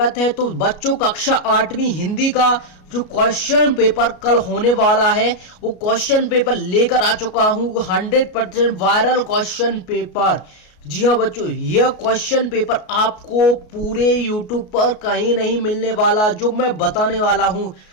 है। तो बच्चों, कक्षा 8वीं हिंदी का जो क्वेश्चन पेपर कल होने वाला है वो क्वेश्चन पेपर लेकर आ चुका हूँ। 100% वायरल क्वेश्चन पेपर। जी हाँ बच्चों, यह क्वेश्चन पेपर आपको पूरे यूट्यूब पर कहीं नहीं मिलने वाला, जो मैं बताने वाला हूँ।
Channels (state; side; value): late; right; 33 ms